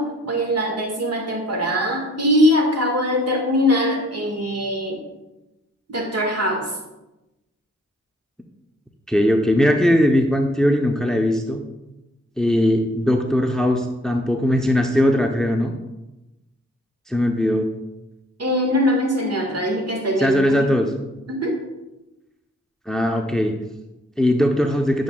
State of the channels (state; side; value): normal; both; correlation 0.64